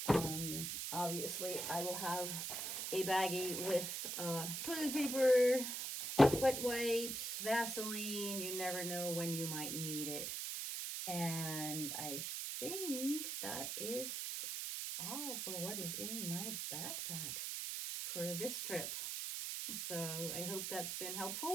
Obviously, I will have a baggie with toilet paper, wet wipes, Vaseline. You never know when you might need it. And I think that is all for what is in my backpack for this trip. So I hope that's been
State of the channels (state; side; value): noise; right; hiss, 3 dB below the sound